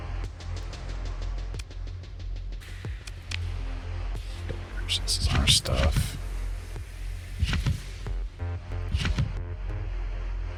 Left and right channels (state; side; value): identical; both; correlation 1.00